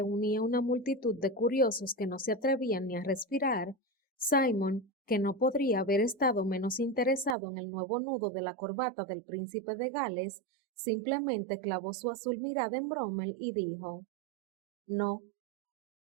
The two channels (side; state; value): left; drops out; at 7.4 s